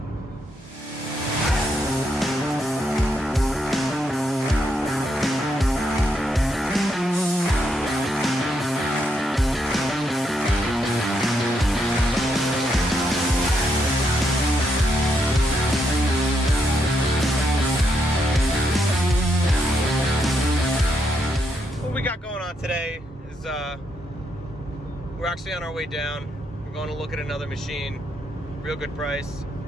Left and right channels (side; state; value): both; normal; correlation 0.79